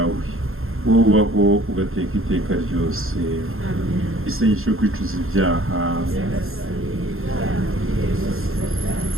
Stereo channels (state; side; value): late; left; 0.61 ms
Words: wowe ubaho ugateka iteka ryose. Isengesho yo kwicuza ibyaha.